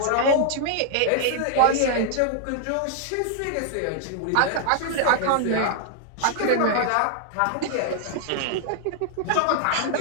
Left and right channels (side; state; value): both; different; correlation 0.00